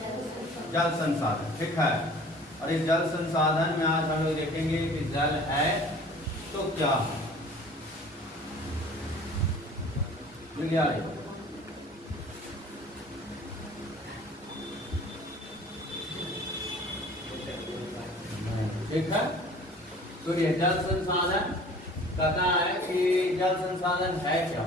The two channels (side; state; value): both; normal; correlation 0.48